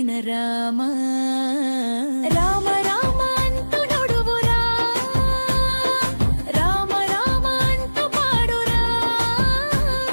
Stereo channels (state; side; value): inverted; both; correlation -1.00